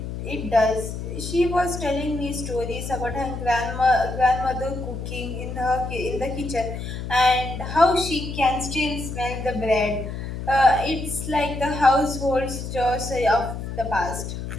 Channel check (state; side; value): noise; left; hum, 6 dB below the sound